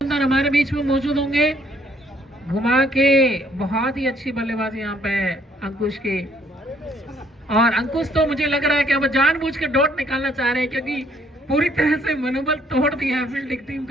हमारे बीच में मौजूद होंगे। घुमा के बहुत ही अच्छी बल्लेबाजी यहाँ पे अंकुश की। और अंकुश तो मुझे लग रहा है कि अब जानबूझ के डॉट निकालना चाह रहे हैं, क्योंकि पूरी तरह से मनोबल तोड़ दिया है फील्डिंग टीम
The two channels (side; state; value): both; normal; correlation 0.66